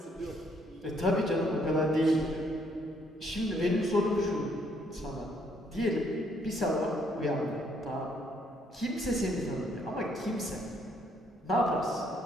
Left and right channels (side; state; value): both; normal; correlation 0.69